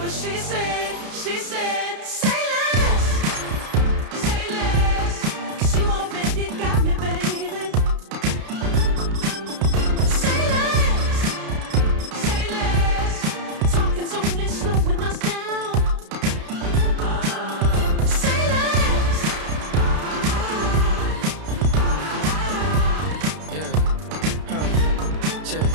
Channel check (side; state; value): left; late; 32 ms